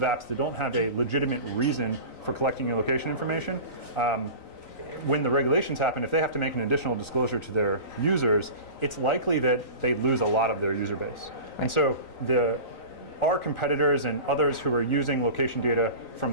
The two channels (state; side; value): late; right; 3.9 ms